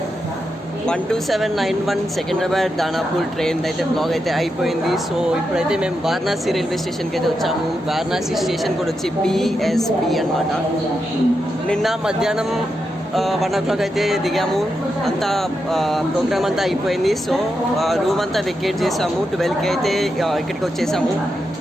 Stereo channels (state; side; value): normal; both; correlation 0.86